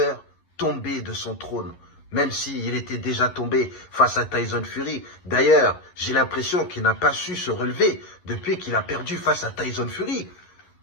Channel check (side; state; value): right; late; 11 ms